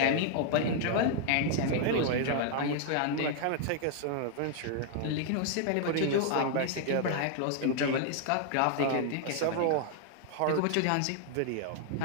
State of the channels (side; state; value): both; different; correlation 0.00